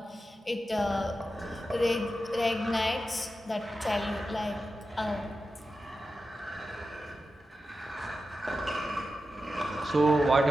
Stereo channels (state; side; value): normal; both; correlation 0.91